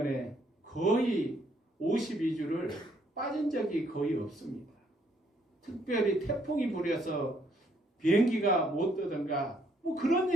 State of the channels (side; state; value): both; normal; correlation 0.69